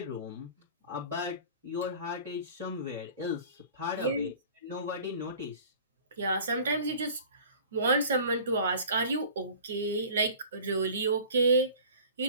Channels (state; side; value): inverted; both; correlation -0.44